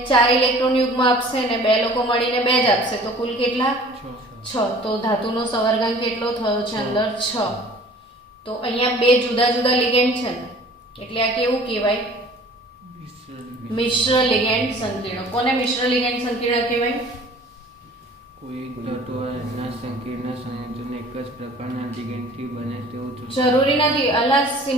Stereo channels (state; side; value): normal; both; correlation 0.49